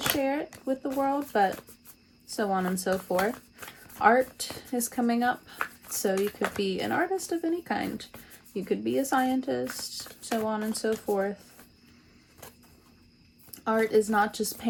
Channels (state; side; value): identical; both; correlation 1.00